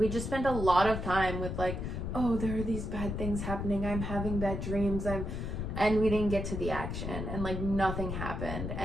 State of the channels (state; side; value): noise; left; rumble, 4 dB below the sound